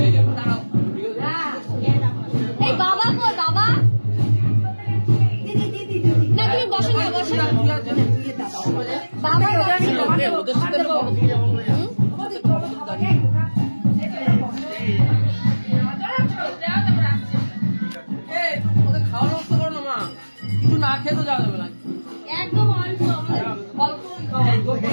এই বাবা কই বাবা? না তুমি বসো না, বসো না বাবা। খেতে যাওয়া যাবে না একদম অল্প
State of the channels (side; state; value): both; inverted; correlation -1.00